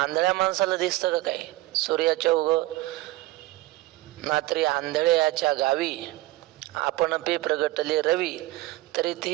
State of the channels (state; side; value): quieter; left; 18.5 dB